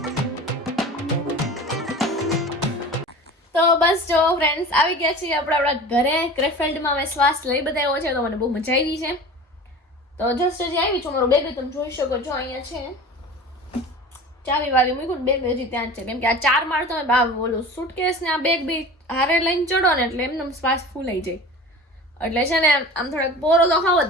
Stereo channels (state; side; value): normal; both; correlation 0.37